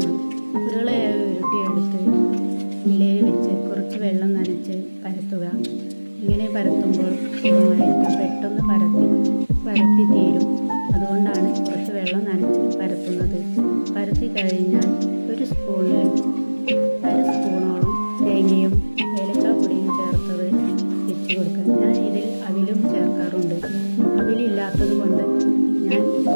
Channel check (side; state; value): both; inverted; correlation -1.00